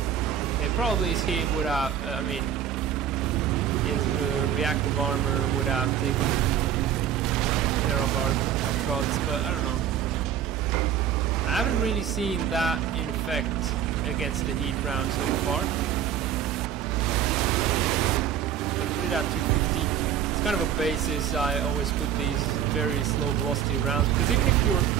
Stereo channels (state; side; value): quieter; left; 9.3 dB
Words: Okay, probably he would have. I mean, his reactive armor would have taken care of our shots, but I don't know. I haven't really seen that in effect against the heat round so far. I'm gonna put it at 250. It's kind of a basis. I always put these very slow velocity rounds because even if you're